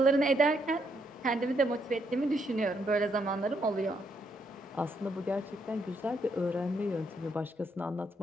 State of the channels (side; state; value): both; normal; correlation 0.75